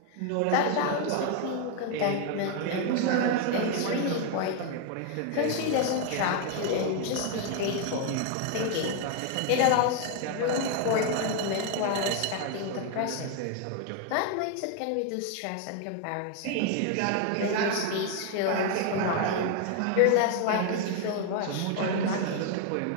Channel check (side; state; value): both; different; correlation 0.01